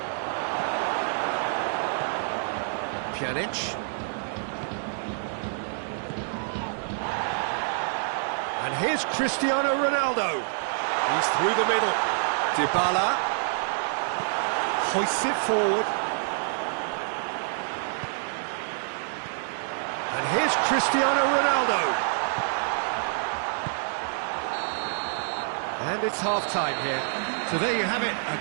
Pjanic. And here's Cristiano Ronaldo. He's through the middle. Dybala hoists it forward. And here's Cristiano Ronaldo. And it's half-time here. So there you have it, a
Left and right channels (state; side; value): silent; left; digital silence